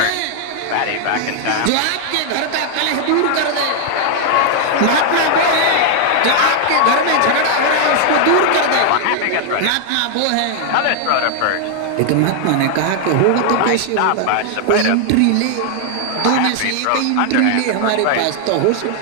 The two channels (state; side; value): different; both; correlation 0.00